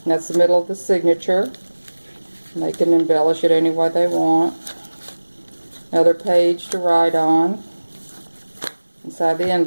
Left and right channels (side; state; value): both; inverted; correlation -1.00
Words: that's the middle of the signature. And they can embellish it any way they want. Another page to write on inside the